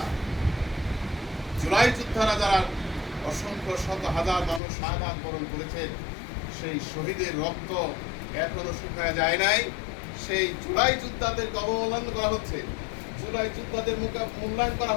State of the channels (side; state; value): right; drops out; at 4.6 s